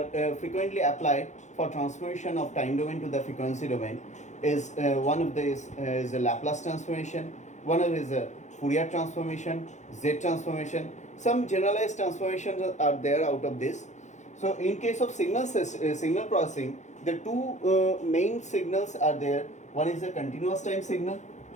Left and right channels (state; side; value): late; right; 0.34 ms